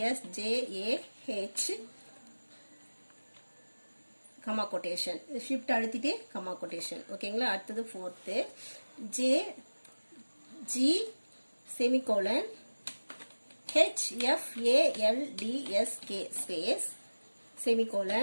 comma quotation, shift அழுத்திட்டு கமா கொட்டேஷன். ஓகேங்களா. அடுத்தது fourth JG semicolon HFALDSK space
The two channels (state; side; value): inverted; both; correlation -1.00